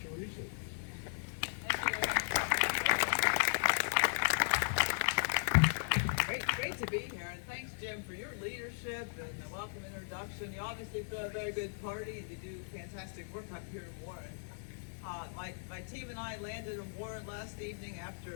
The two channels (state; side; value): silent; right; 53 dB below the other